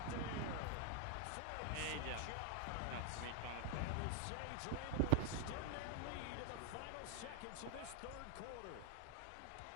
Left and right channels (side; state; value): both; different; correlation 0.00